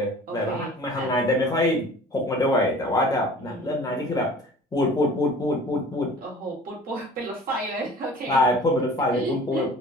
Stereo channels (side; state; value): both; normal; correlation 0.45